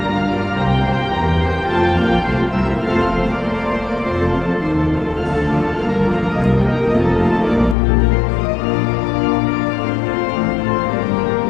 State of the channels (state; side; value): drops out; right; at 7.8 s